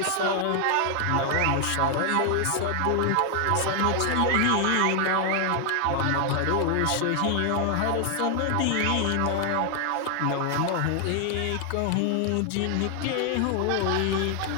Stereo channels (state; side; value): different; both; correlation 0.00